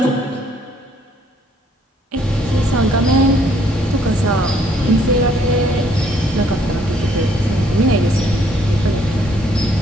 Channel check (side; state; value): both; normal; correlation 0.66